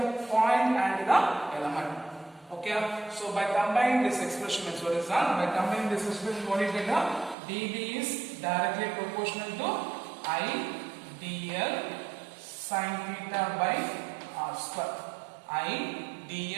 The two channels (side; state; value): left; drops out; at 7.4 s